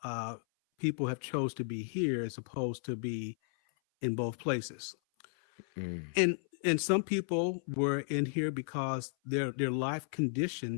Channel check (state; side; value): silent; right; 55 dB below the other